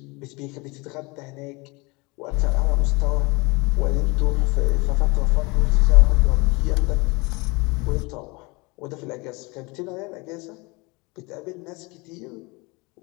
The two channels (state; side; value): quieter; right; 26.5 dB